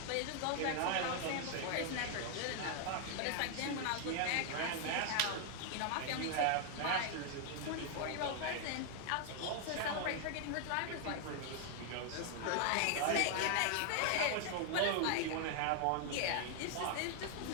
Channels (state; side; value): different; both; correlation 0.00